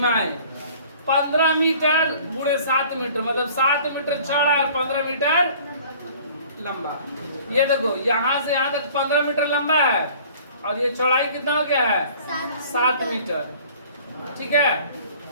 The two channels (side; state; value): both; inverted; correlation -0.50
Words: 15 मीटर गुणे 7 मीटर, मतलब 7 मीटर चौड़ा और 15 मीटर लंबा। ये देखो यहाँ से यहाँ तक 15 मीटर लंबा है और ये चौड़ाई कितना हो गया है, 7 मीटर। ठीक है,